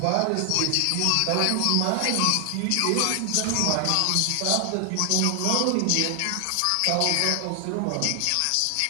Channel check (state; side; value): different; both; correlation 0.00